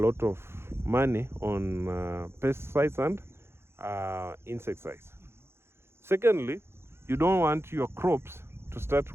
of money on pesticides and insecticides. Secondly, you don't want your crops to start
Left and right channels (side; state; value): left; late; 0.12 ms